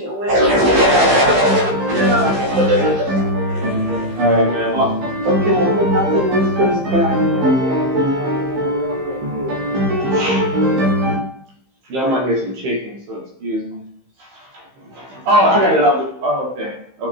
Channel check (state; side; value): late; left; 15 ms